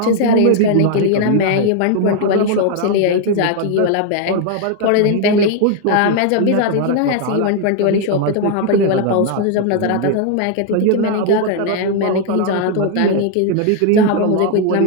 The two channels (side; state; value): both; different; correlation 0.00